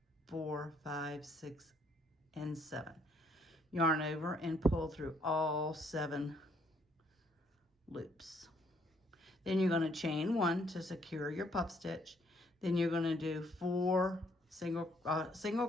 4, 5, 6, and 7. Yarn over and pull through all 7 loops. Then you're going to chain 1 to secure your puff stitch. Then you're going to do 4 single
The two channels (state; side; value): normal; both; correlation 0.68